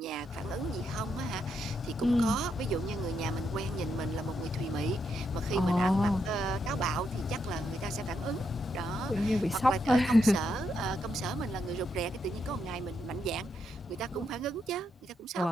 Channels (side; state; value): both; normal; correlation 0.80